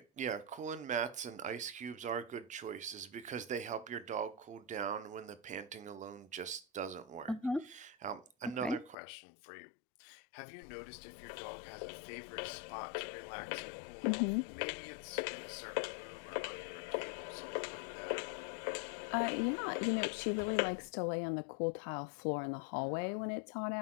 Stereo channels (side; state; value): right; drops out; at 9.0 s